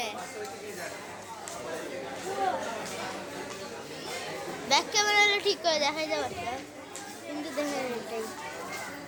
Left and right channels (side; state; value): both; identical; correlation 1.00